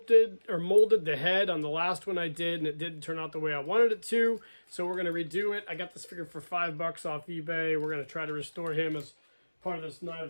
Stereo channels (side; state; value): both; inverted; correlation -1.00